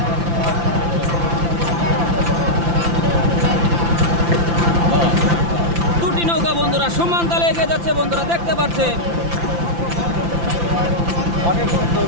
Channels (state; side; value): late; left; 5.9 ms